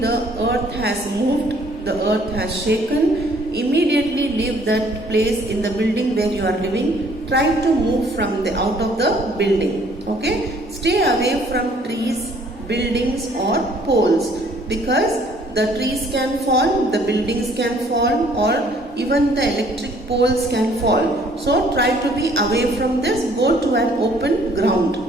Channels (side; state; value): both; normal; correlation 0.60